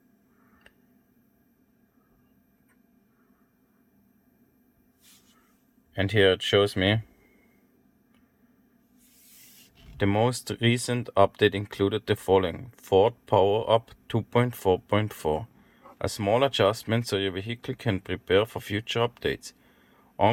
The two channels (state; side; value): identical; both; correlation 1.00